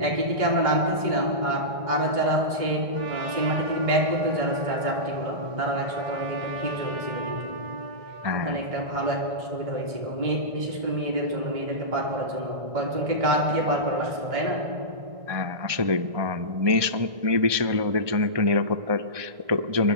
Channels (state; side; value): late; left; 1.6 ms